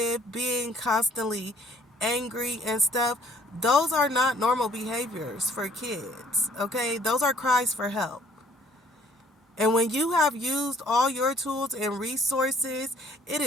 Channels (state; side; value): normal; both; correlation 0.60